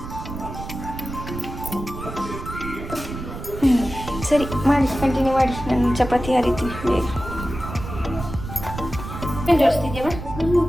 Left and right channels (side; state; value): right; noise; rumble, 9 dB below the sound